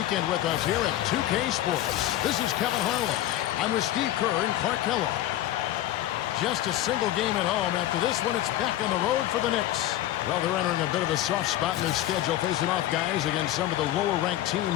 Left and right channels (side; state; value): right; quieter; 13.8 dB